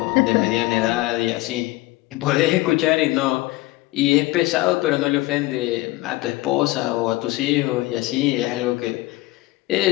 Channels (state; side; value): quieter; right; 19.4 dB